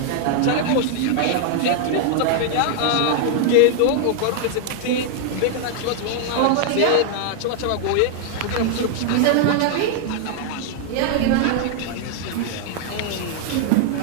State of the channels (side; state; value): both; different; correlation 0.00